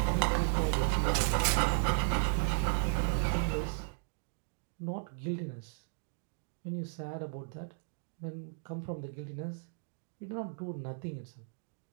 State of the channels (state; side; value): silent; left; digital silence